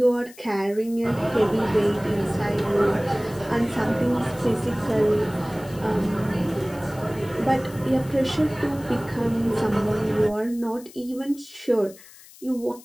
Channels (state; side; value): noise; left; hiss, 21 dB below the sound